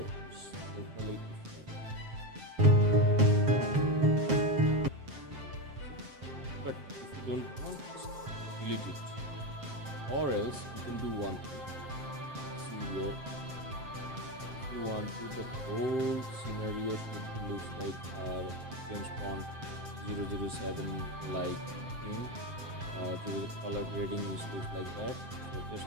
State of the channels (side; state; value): left; late; 7.6 ms